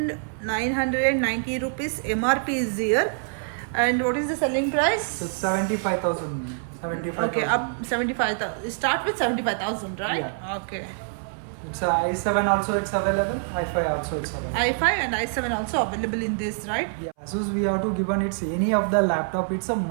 rupees MRP is here. And what is the selling price? It's 75,000. Okay, up 75,000. Start with 75,000, right? Yeah. Okay. It's i7 also it's available. i5 also is available. i5 and i7 also available in this, right? Yeah. Asus we have to give on it's any of the laptop. It's a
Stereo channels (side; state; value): left; silent; 61 dB below the other